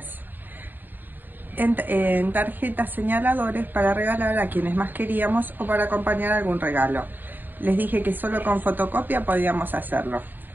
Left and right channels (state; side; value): late; left; 0.091 ms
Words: en tarjetas señaladores para regalar a quienes más queríamos o para acompañar algún regalo. Les dije que solo con fotocopia podíamos hacerlo.